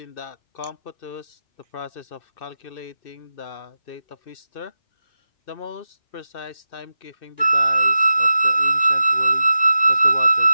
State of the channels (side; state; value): right; late; 2.6 ms